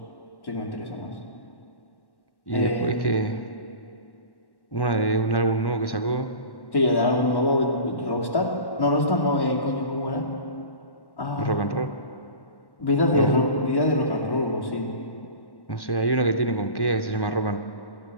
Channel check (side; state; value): right; late; 1.1 ms